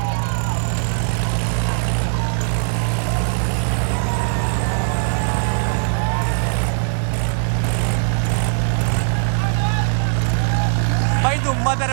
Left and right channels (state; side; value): silent; left; 66 dB below the other